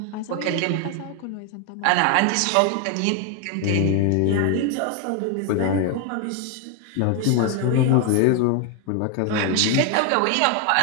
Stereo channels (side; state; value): both; different; correlation 0.01